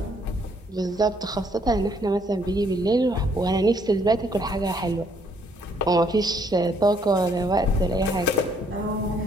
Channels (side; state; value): both; normal; correlation 0.67